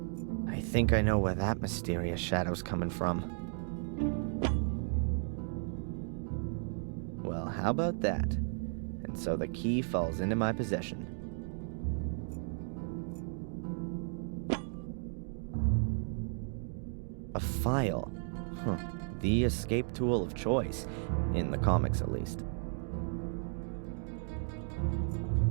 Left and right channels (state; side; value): silent; left; 55 dB below the other